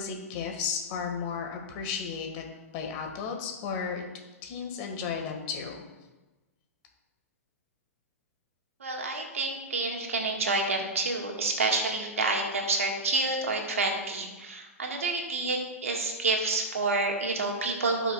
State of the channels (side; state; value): both; normal; correlation -0.08